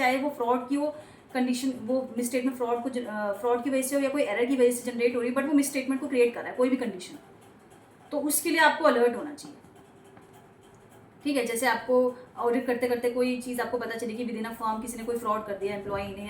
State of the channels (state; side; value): identical; both; correlation 1.00